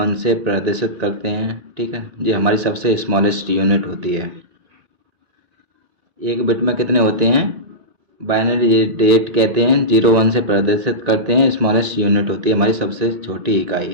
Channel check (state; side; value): late; left; 1.9 ms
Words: से प्रदर्शित करते हैं, ठीक है। ये हमारी सबसे स्मॉलेस्ट यूनिट होती है। 1 बिट में कितने होते हैं? बाइनरी डिजिट कहते हैं, 0 1 से प्रदर्शित करते हैं, स्मॉलेस्ट यूनिट होती है, हमारी सबसे छोटी